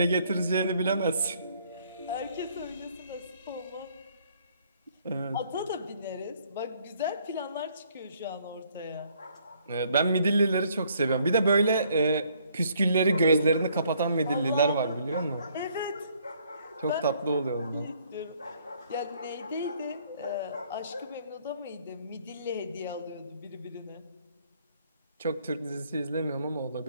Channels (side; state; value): both; inverted; correlation -0.65